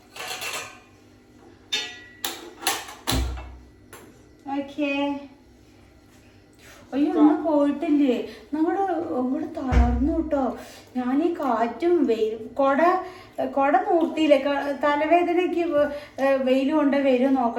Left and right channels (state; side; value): identical; both; correlation 1.00